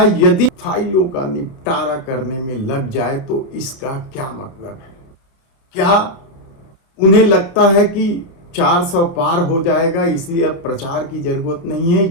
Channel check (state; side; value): late; right; 30 ms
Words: यदि फाइलों का निपटारा करने में लग जाए तो इसका क्या मतलब है? क्या उन्हें लगता है कि 400 पार हो जाएगा इसलिए अब प्रचार की जरूरत नहीं है,